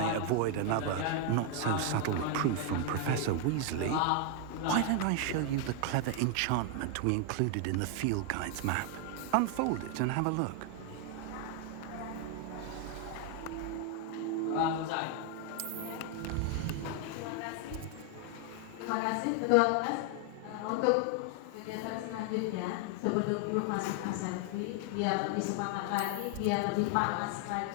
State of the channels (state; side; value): different; both; correlation 0.00